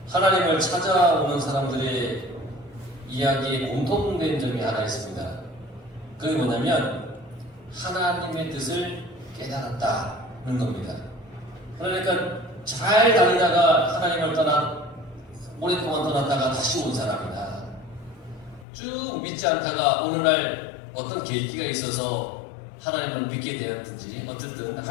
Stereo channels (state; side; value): drops out; right; at 18.7 s